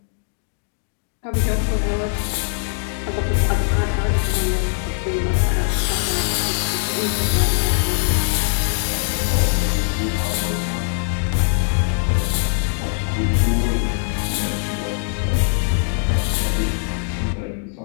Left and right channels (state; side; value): silent; right; digital silence